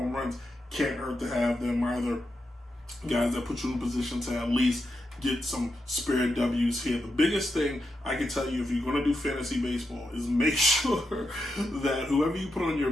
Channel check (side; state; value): both; normal; correlation 0.86